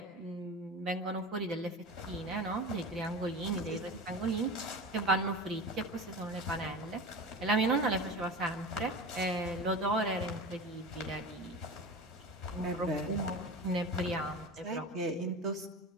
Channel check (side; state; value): both; normal; correlation 0.30